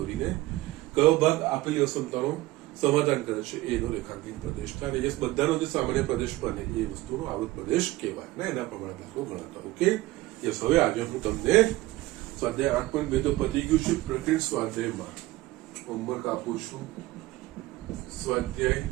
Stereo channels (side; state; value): left; quieter; 18.0 dB